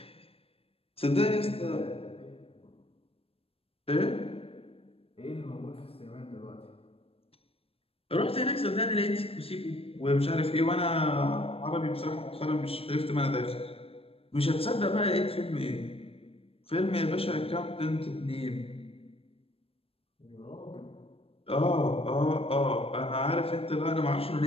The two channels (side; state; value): right; late; 0.28 ms